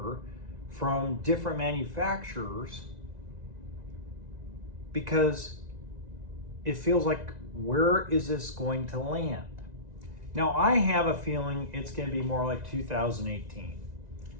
from different manufacturers, because it feels like, where is this going to land? Now, I have a feeling it's going to be more like 2018.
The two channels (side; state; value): left; late; 1.9 ms